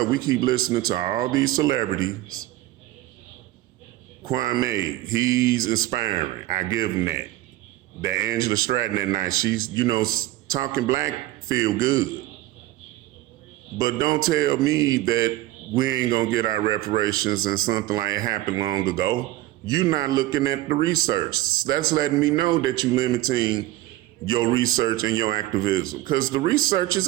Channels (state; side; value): quieter; left; 16.4 dB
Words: We keep listening to all these celebrities. Kwame, he's inspiring. I give him that. That Angela Stratton that night, she's, talking black feel good. But don't tell me that we ain't gonna get our reparations and something like it happened long ago. You're not looking at the research. That's letting me know that you're limiting your research and your activism, because the research is